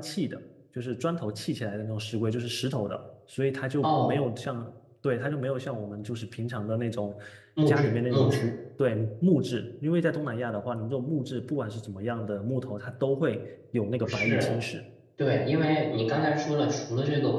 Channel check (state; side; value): identical; both; correlation 1.00